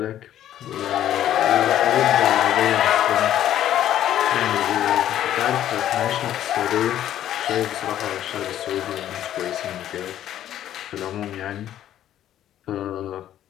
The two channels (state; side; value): quieter; right; 11.7 dB